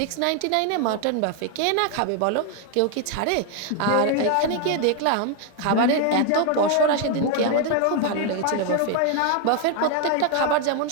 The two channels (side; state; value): both; different; correlation 0.00